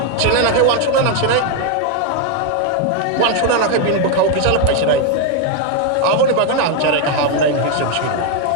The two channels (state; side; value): different; both; correlation 0.01